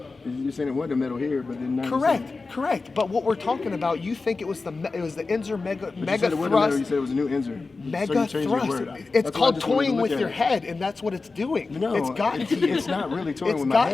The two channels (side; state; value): right; quieter; 3.9 dB